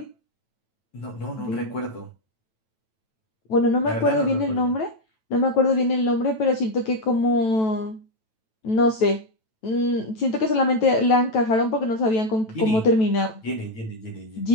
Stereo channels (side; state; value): right; late; 9.1 ms